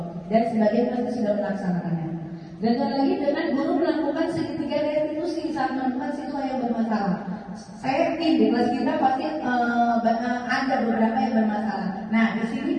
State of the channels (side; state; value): both; identical; correlation 1.00